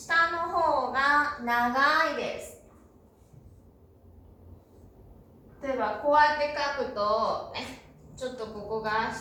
の方が長いです。例えばこうやって書くと、ちょっとここが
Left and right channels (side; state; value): both; identical; correlation 1.00